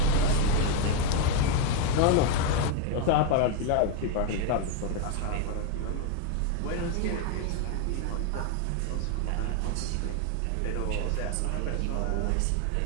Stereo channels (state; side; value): different; both; correlation 0.01